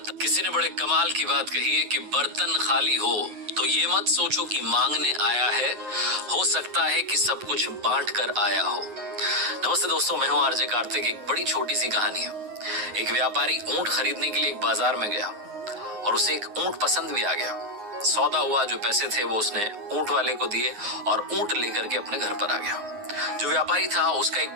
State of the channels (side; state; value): left; late; 9.6 ms